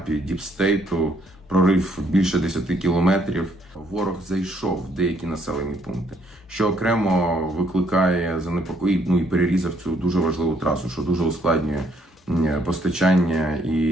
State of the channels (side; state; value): both; normal; correlation 0.68